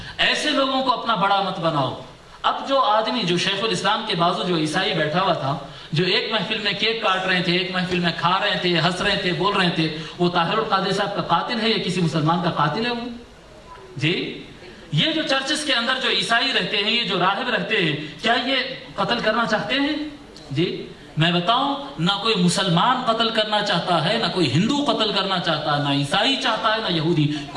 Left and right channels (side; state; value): both; identical; correlation 1.00